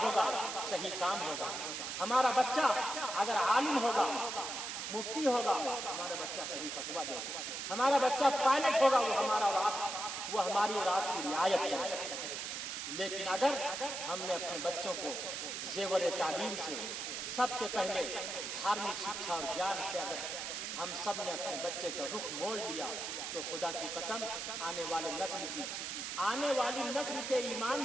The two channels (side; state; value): right; noise; hiss, 4 dB below the sound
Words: ہوگا صحیح کام ہوگا. ہمارا بچہ اگر عالم ہوگا، مفتی ہوگا، ہمارا بچہ صحیح فتویٰ دے گا. ہمارا بچہ پائلٹ ہوگا، وہ ہماری اولاد کی رعایت کرے گا. لیکن اگر ہم نے اپنے بچوں کو زیور تعلیم سے سب سے پہلے دھارمک شکشا اور گیان سے اگر ہم سب نے اپنے بچے کا رخ موڑ لیا تو خدا کی قسم آنے والی نسل کے ایمان